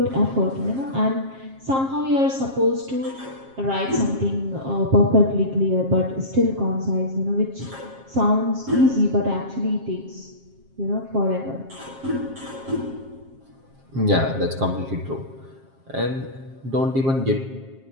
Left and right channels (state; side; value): late; left; 7.5 ms